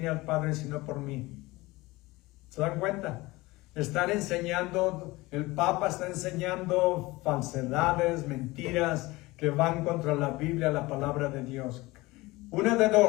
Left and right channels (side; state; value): right; quieter; 21.0 dB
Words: al Padre sino por mí. ¿Se dan cuenta? Están enseñando, el Papa está enseñando falsedades, mentiras que van contra la Biblia, la palabra de Dios. Una de